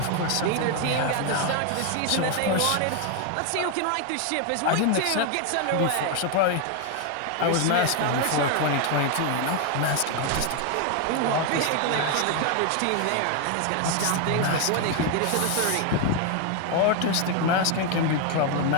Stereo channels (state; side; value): different; both; correlation 0.01